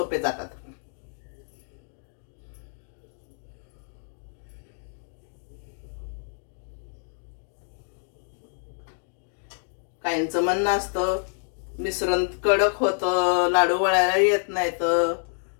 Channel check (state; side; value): silent; right; 60 dB below the other